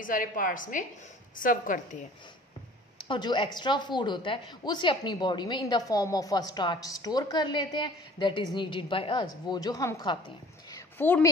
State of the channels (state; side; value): normal; both; correlation 0.48